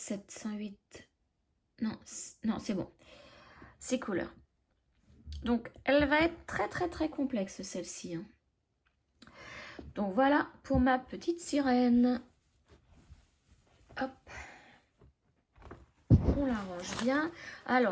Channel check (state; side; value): identical; both; correlation 1.00